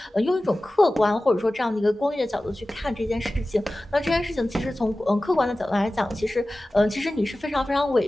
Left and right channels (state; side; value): normal; both; correlation 0.96